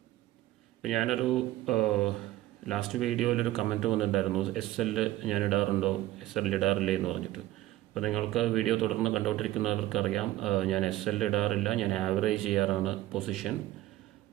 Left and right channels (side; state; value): left; quieter; 15.6 dB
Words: ഇപ്പോൾ ഞാനൊരു ലാസ്റ്റ് വീഡിയോയിലൊരു കമൻറ്റ് വന്നിട്ടുണ്ടായിരുന്നു, SL ഞാൻ ഇടാറുണ്ടോ, SL ഇടാറില്ലേ എന്ന് പറഞ്ഞിട്ട്. അപ്പോൾ നിങ്ങൾക്ക് വീഡിയോ തുടർന്ന് കണ്ടുകൊണ്ടിരിക്കുന്നവർക്കറിയാം, ഞാൻ SL ഇടാറില്ല. ഞാൻ ആവറേജ് ചെയ്യാറാണ് പൊസിഷൻ.